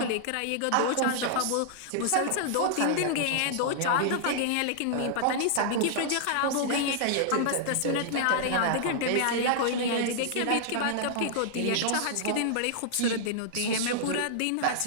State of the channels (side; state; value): both; different; correlation -0.01